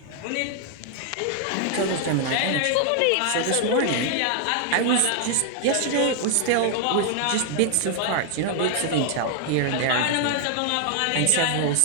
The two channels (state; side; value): different; both; correlation 0.00